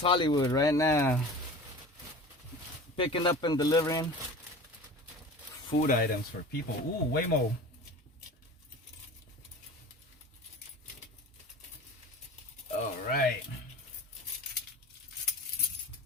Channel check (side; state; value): both; normal; correlation 0.37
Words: Hollywood right now, picking up and delivering food items for people. Ooh, Waymo. All right.